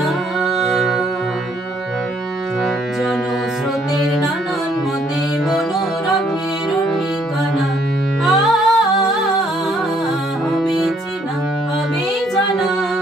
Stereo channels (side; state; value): both; normal; correlation 0.67